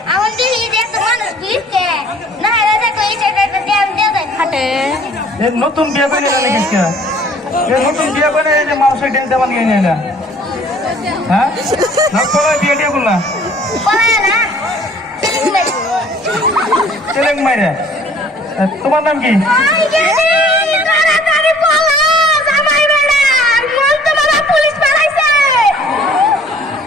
আমার দিদি দেখ মানুষ দিতে না রাজা কই সেটা দেন দেও খাটে। এই নতুন বিয়া করে নিয়ে গেছিস কে? এই নতুন বিয়া করে এই যে মানুষের ডেন্স দেওয়া নিয়ে নিলা। হ্যাঁ? না কোলায় বিয়ে দিয়ে বললা? কোলায় না। চেলেং মাইরে। তোমার নাম কি? তাড়াতাড়ি বলো জামাই বেড়া মন তো বাবা পুলিশ পালাইছে।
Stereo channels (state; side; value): normal; both; correlation 0.54